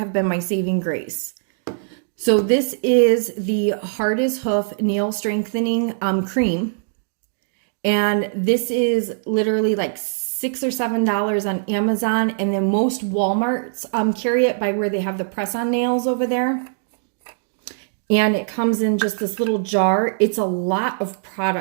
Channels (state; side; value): silent; left; digital silence